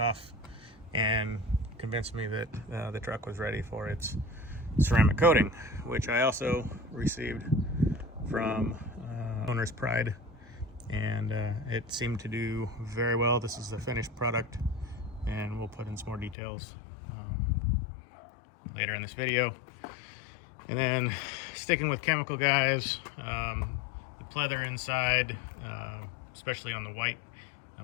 and convinced me that the truck was ready for its ceramic coating, which I also received from Owner's Pride, and it seemed to do very well. This is the finished product, and we'll put in some more details later in this video. And then sticking with Chemical Guys, the pleather inside, especially on the white,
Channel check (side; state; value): right; drops out; at 16.4 s